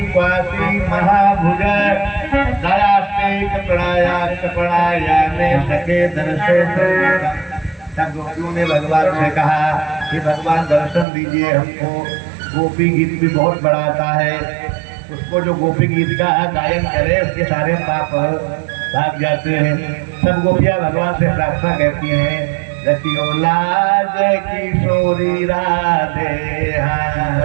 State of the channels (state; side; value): drops out; left; at 11.1 s